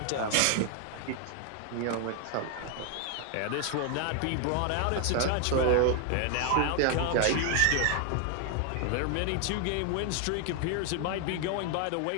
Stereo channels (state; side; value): different; both; correlation 0.00